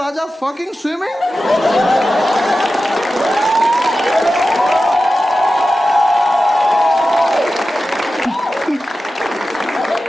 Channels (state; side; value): normal; both; correlation 0.93